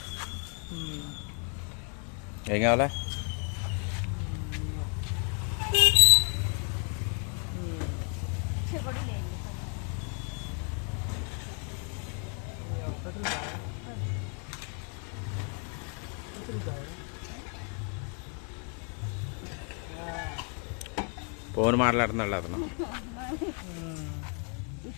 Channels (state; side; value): quieter; right; 39.5 dB